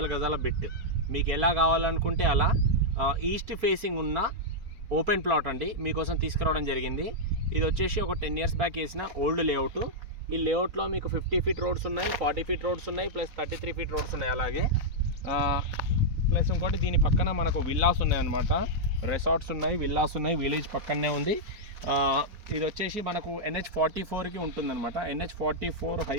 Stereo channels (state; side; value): late; left; 4.2 ms